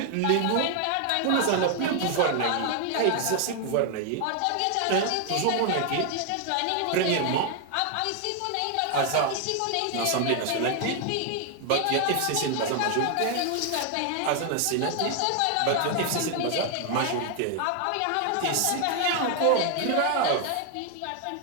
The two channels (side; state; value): both; different; correlation 0.00